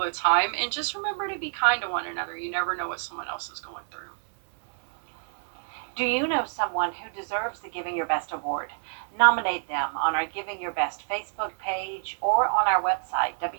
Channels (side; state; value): left; silent; digital silence